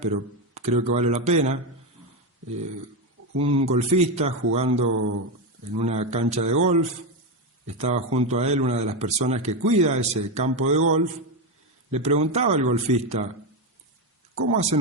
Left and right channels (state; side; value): normal; both; correlation 0.10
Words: pero creo que vale la pena. Un golfista jugando en una cancha de golf, estaba junto a él una de las personas que cuida ese campo de golf. Le preguntaba al golfista: ¿cómo hacen